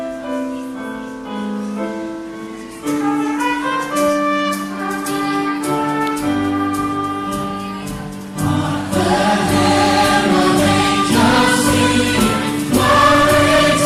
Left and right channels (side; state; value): both; identical; correlation 1.00